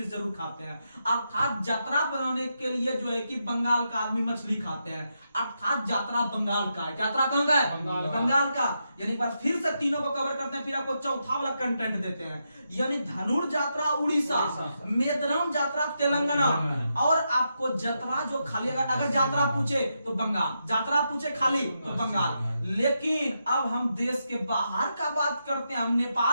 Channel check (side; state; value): both; inverted; correlation -0.84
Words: जरूर खाते हैं। अर्थात यात्रा बनाने के लिए जो है कि बंगाल का आदमी मछली खाते हैं, अर्थात यात्रा बंगाल का है। यात्रा कहां का है? बंगाल का। यानी पर फिर से तीनों को कवर करते हैं, फिर आपको चौथा वाला कंटेंट देते हैं। यानी धनुर यात्रा उड़ीसा, मेदरम यात्रा तेलंगाना, और आपको यात्रा जो खाली अगर यात्रा पूछे तो बंगाल, यात्रा पूछे खाली तो बंगाल। लेकिन अब हम देश के बाहर का बात करते हैं, हम